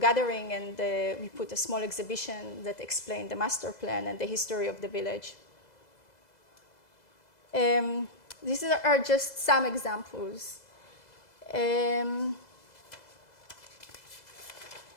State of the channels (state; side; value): late; right; 2.0 ms